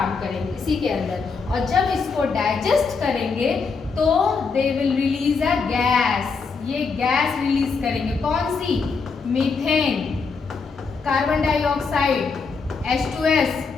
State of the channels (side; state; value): right; quieter; 4.9 dB